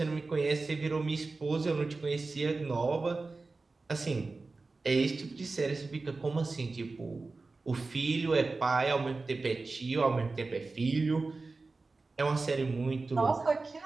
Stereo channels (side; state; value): left; quieter; 3.7 dB